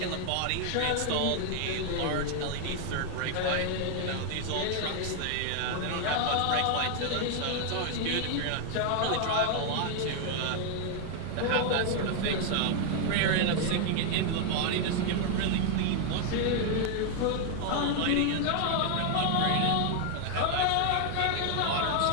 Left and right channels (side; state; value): both; different; correlation 0.00